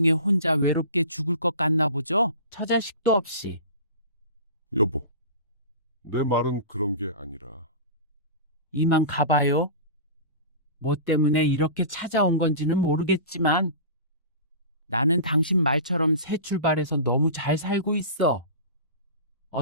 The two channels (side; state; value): both; inverted; correlation -0.34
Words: 혼자 외롭게 죽을 것 같나 보죠? 처자식도 없이. 여보, 내 말은 그런 게 아니라 이만 가봐요. 뭐 때문에 이렇게 찾아온 건지는 모르겠지만 나는 당신 말처럼 새 출발해서 너무 잘 살고 있어.